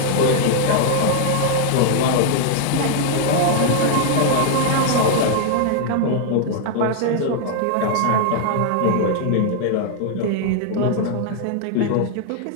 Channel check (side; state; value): both; different; correlation 0.00